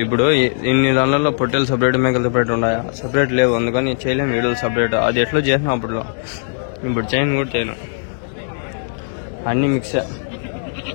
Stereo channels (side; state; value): right; silent; digital silence